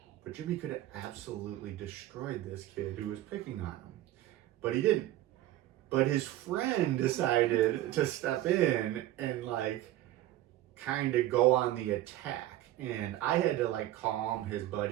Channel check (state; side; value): quieter; left; 14.4 dB